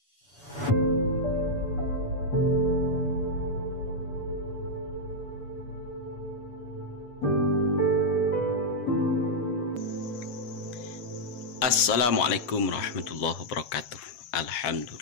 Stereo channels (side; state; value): right; late; 8.4 ms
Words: Assalamualaikum warahmatullahi wabarakatuh.